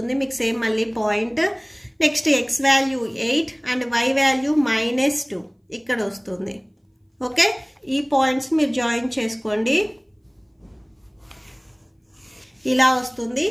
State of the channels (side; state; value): both; identical; correlation 1.00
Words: మీకు సేమ్ మళ్ళీ point next x value 8 and y value -2 ఇక్కడ వస్తుంది ఓకే ఈ పాయింట్స్ మీరు జాయిన్ చేసుకోండి ఇలా వస్తుంది